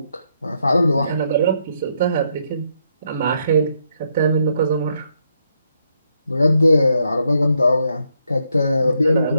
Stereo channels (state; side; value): inverted; both; correlation -0.77